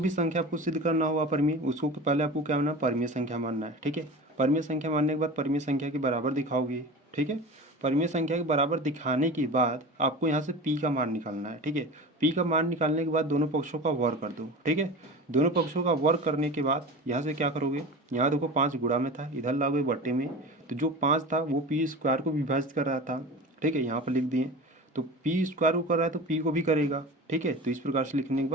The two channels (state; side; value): normal; both; correlation 0.33